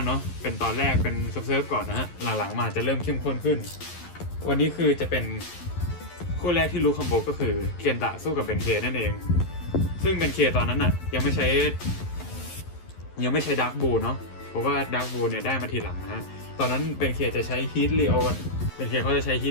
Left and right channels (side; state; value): right; late; 11 ms